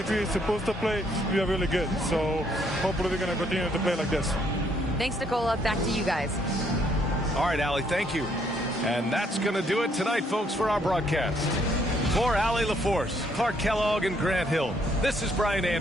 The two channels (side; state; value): both; normal; correlation 0.69